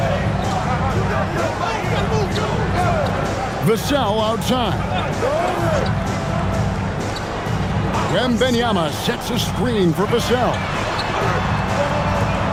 Vassell outside. Wembanyama sets a screen for Vassell.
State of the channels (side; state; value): both; identical; correlation 1.00